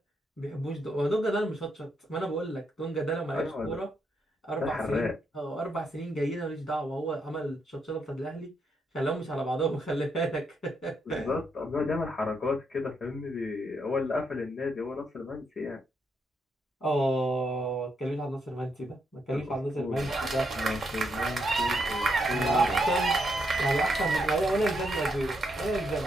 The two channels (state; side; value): normal; both; correlation 0.78